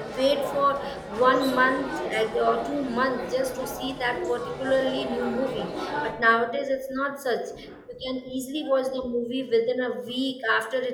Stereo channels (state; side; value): identical; both; correlation 1.00